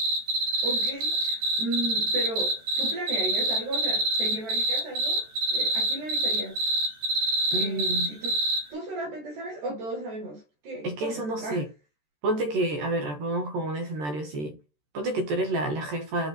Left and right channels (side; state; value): left; late; 13 ms